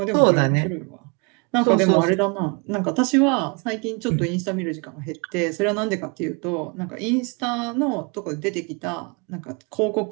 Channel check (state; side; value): quieter; left; 32.5 dB